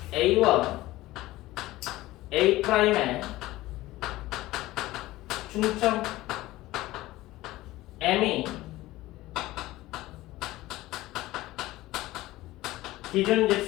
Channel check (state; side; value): quieter; right; 17.5 dB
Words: A와 A'의 중점 M이 기준